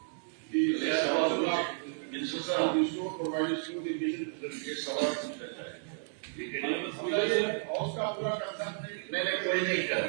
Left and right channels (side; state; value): left; silent; digital silence